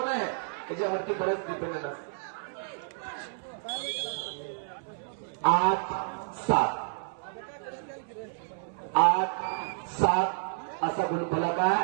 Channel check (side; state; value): left; silent; 58 dB below the other